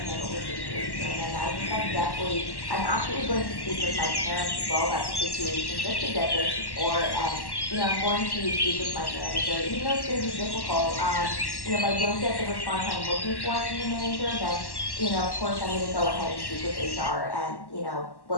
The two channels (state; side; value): late; right; 1.1 ms